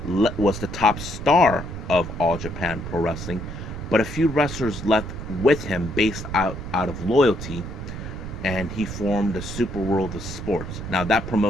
was the top star of All Japan Pro Wrestling, but a few wrestlers left with him based out of loyalty, and he formed the Super World of Sports. Now, that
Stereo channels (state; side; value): noise; right; rumble, 8 dB below the sound